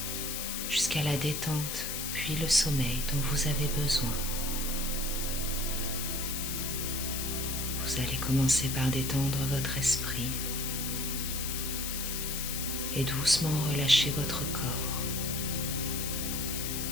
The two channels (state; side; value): noise; left; hiss, 3 dB below the sound